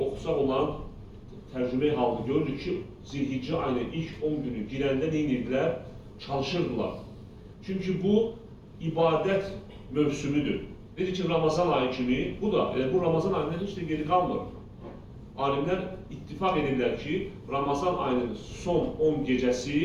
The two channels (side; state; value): both; identical; correlation 1.00